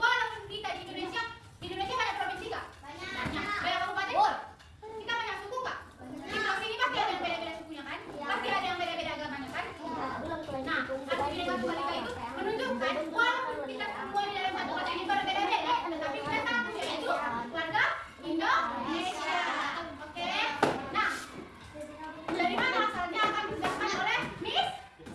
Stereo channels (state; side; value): identical; both; correlation 1.00